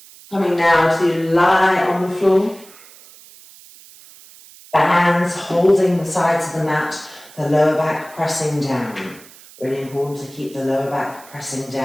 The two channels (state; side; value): noise; right; hiss, 22 dB below the sound